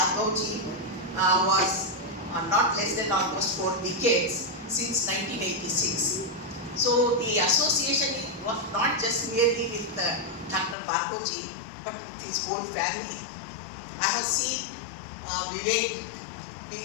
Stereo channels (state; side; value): drops out; right; at 10.8 s